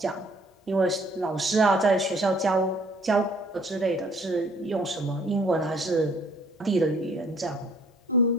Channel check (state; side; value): normal; both; correlation 0.58